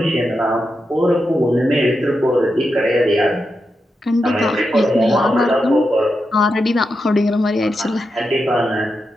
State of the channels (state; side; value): normal; both; correlation 0.87